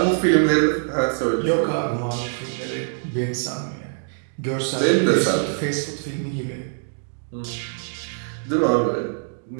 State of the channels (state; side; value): silent; left; digital silence